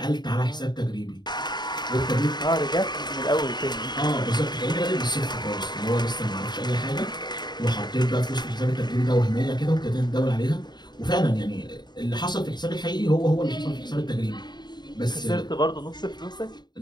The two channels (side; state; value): right; late; 0.21 ms